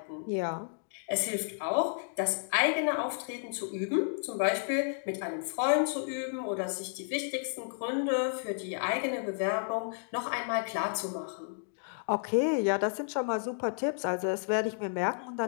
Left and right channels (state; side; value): silent; right; digital silence